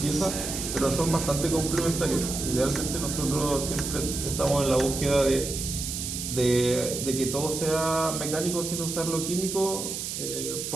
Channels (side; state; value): right; noise; hiss, 5 dB below the sound